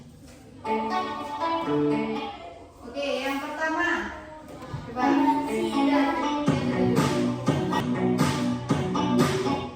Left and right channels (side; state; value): both; identical; correlation 1.00